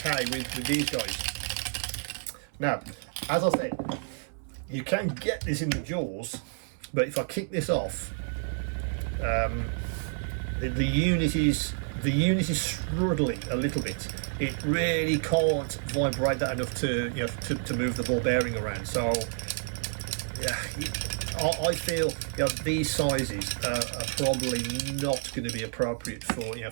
with these guys. Now, as I said, you can get this in the jaws, but if I kick this off, the unit is struggling a little bit. It really can't vibrate that enough to move the ball bearing around. So yeah, I feel these sizes are probably not going to be appropriate for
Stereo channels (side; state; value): left; silent; 58 dB below the other